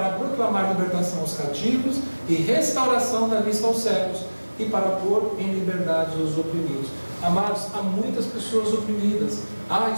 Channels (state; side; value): inverted; both; correlation -1.00